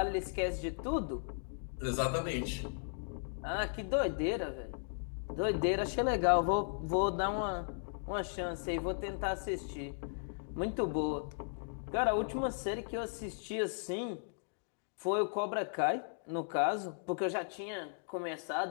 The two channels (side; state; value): right; silent; digital silence